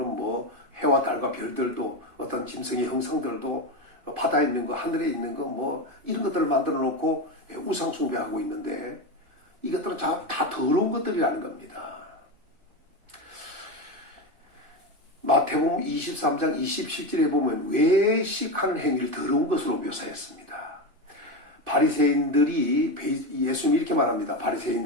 뭐 해와 달과 별들도 어떤 짐승의 형상들도 바다에 있는 거, 하늘에 있는 거, 뭐 이런 것들을 만들어 놓고 우상 숭배하고 있는데, 이것들은 다 더러운 것들이라는 겁니다. 마태복음 23장 27절에 보면 외식하는 행위를 더러운 것으로 묘사했습니다. 바리새인들이 예수님이 이렇게 말합니다.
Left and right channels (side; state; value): left; late; 2.6 ms